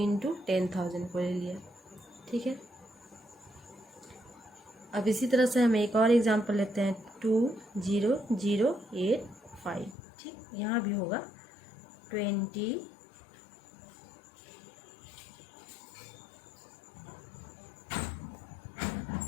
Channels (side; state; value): right; drops out; at 10.0 s